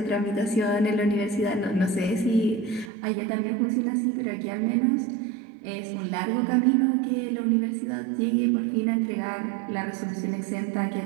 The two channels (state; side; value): drops out; left; at 2.9 s